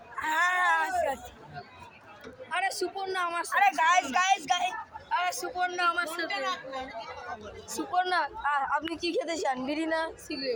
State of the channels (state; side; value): identical; both; correlation 1.00